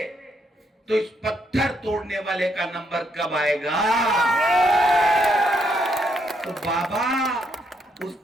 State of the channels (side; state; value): both; normal; correlation 0.75